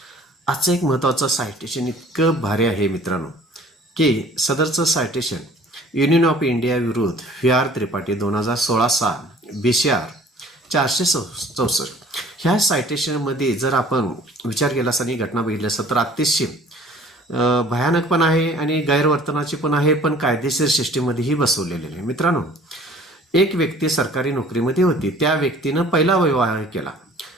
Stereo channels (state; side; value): normal; both; correlation 0.51